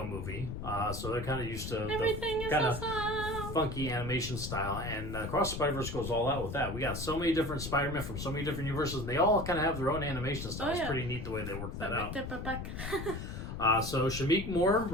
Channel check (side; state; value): left; noise; rumble, 6 dB below the sound